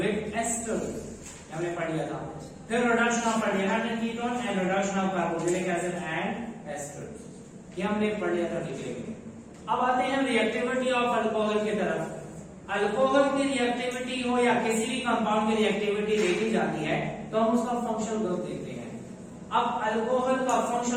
esters हमने पढ़ लिया था। फिर reduction of aldehyde ketone and reduction of carboxylic acid and esters, ये हमने पढ़ लिया था डिटेल में। अब आते हैं रिएक्टिविटी ऑफ अल्कोहल की तरफ। अल्कोहल की रिएक्टिविटी हो या किसी भी कंपाउंड की रिएक्टिविटी देखी जाती है तो हम उसका फंक्शनल ग्रुप देखते हैं। अब अल्कोहल का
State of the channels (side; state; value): both; identical; correlation 1.00